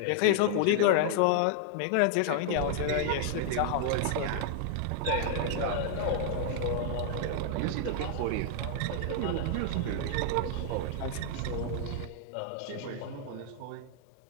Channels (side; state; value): both; different; correlation -0.01